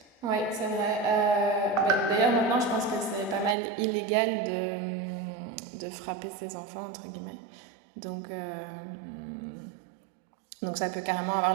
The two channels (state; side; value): drops out; left; at 3.6 s